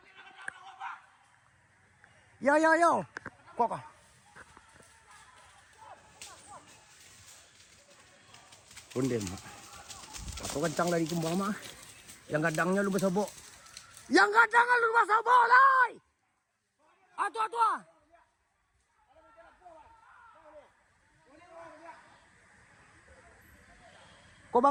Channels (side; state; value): both; identical; correlation 1.00